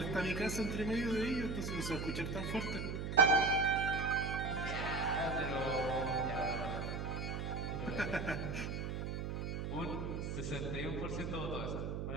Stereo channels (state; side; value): noise; right; hum, 3 dB below the sound